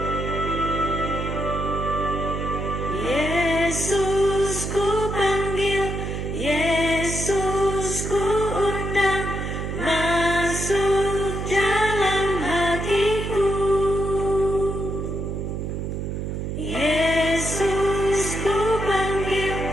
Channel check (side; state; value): right; noise; hum, 4 dB below the sound